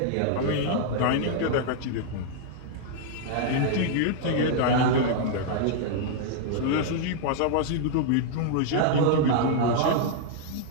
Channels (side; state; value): both; different; correlation -0.01